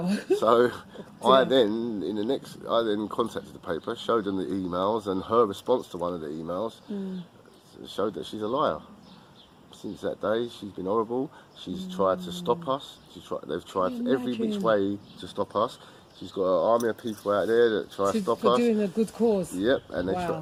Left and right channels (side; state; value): both; identical; correlation 1.00